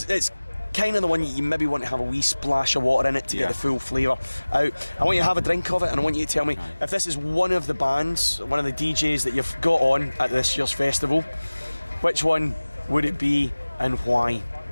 kind of the one you maybe want to have a wee splash of water in it to get the full flavour out. I want you to have a drink of it, and I want you to tell me if this is one of the bands, one of the DJs that you've got on at this year's festival, which one would it be and why?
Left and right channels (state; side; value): inverted; both; correlation -1.00